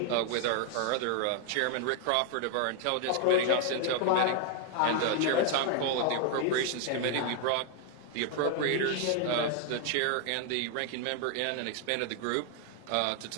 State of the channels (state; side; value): different; both; correlation 0.00